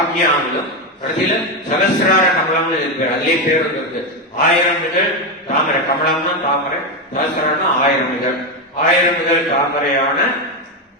ஆக்ஞாவிலும், கடைசியில சகசிரார கமலம்னு இருக்கு. அதுலயே பேர் இருக்கு. 1000 இதழ் தாமரை. கமலம்னா தாமரை, சகசிராரம்னா 1000 இதழ். 1000 இதழ் தாமரையான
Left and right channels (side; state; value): both; normal; correlation 0.09